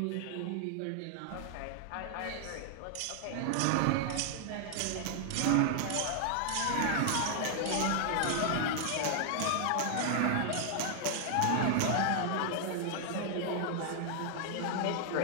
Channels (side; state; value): both; different; correlation 0.00